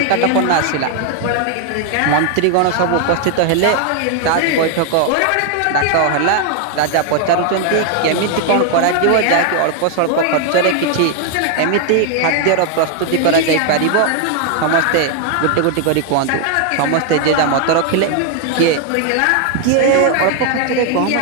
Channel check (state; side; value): different; both; correlation 0.00